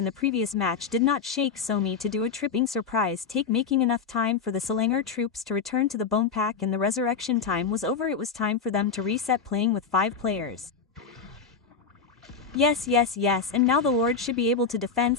the previous match did not shake Somi to do a tripping surprise take, making enough time for the Selangor troops to return to the bone pack, and the resurrection time was over. It was time for them to reset playing with 5 players. Yes, and now the Lord should be able to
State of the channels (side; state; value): right; quieter; 5.6 dB